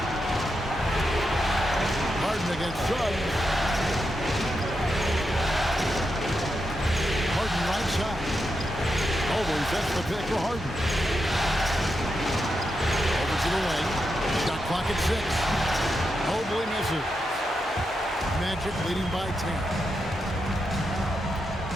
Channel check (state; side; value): normal; both; correlation 0.86